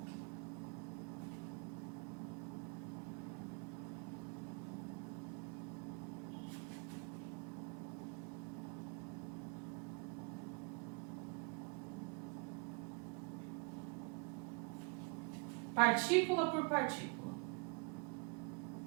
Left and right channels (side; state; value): left; quieter; 32.7 dB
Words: Partícula por partícula.